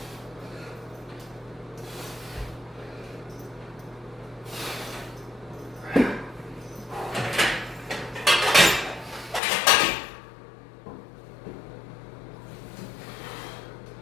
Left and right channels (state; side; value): drops out; right; at 9.4 s